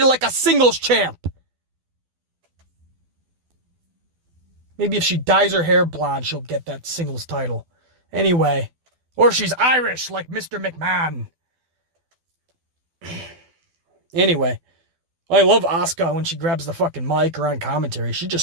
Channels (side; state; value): left; late; 12 ms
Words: like a singles champ. Maybe if she dyes her hair blonde, she'll get that singles title. Anyway, Or she's Irish like Mr. McMahon. Anyway, I love Asuka when she grabs the fucking mic or on commentary.